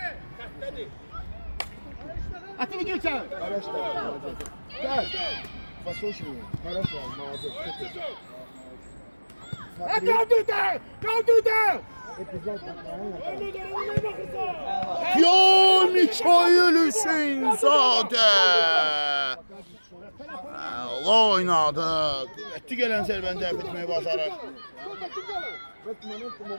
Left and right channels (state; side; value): inverted; both; correlation -1.00